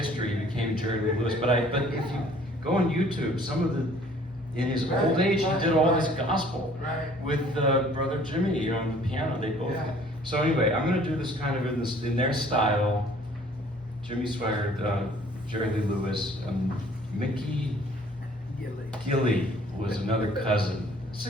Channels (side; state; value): both; normal; correlation 0.55